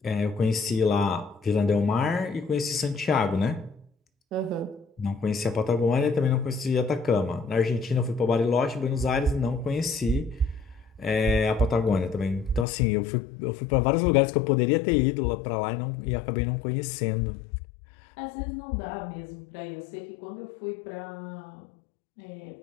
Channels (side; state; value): right; drops out; at 12.7 s